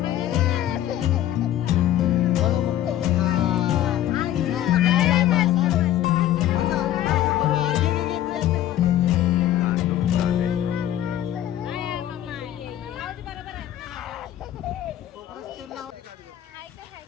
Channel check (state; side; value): quieter; right; 12.4 dB